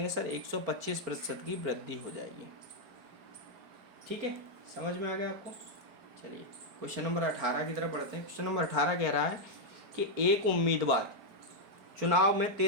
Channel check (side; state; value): left; late; 4.4 ms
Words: सर 125% की वृद्धि हो जाएगी। ठीक है, समझ में आ गया आपको? चलिए क्वेश्चन नंबर 18 की तरफ बढ़ते हैं। क्वेश्चन नंबर 18 कह रहा है कि एक उम्मीदवार चुनाव में